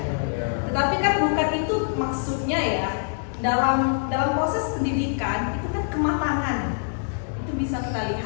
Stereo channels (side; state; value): right; silent; digital silence